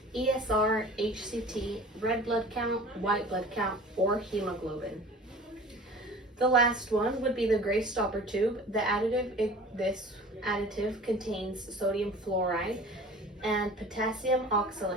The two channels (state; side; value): normal; both; correlation 0.43